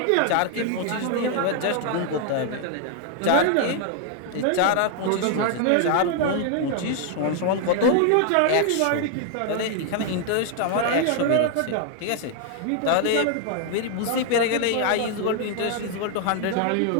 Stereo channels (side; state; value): both; different; correlation 0.00